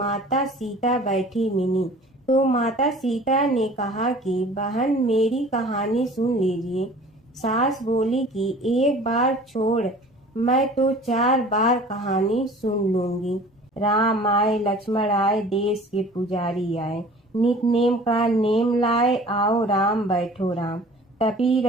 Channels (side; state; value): both; normal; correlation 0.46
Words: सीता बैठी मिली, तो माता सीता ने कहा कि बहन, मेरी कहानी सुन लीजिए। सास बोली कि एक बार छोड़, मैं तो 4 बार कहानी सुन लूंगी। राम आए, लक्ष्मण आए, देश के पुजारी आए, नित नेम का नेम लाए, आओ राम बैठो राम, तपी